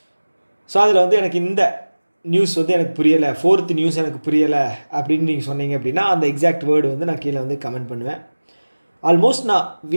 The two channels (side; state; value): both; inverted; correlation -1.00